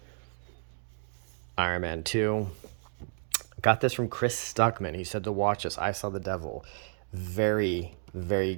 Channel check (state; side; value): silent; left; digital silence